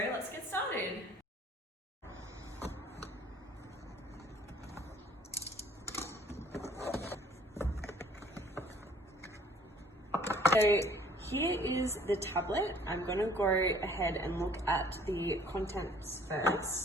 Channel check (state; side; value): normal; both; correlation 0.56